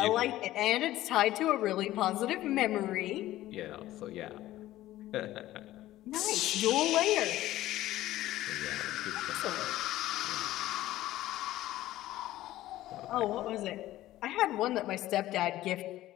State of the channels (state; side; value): quieter; right; 15.2 dB